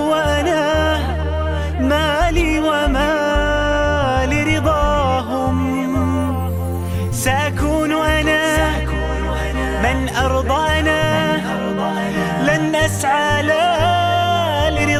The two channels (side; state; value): both; identical; correlation 1.00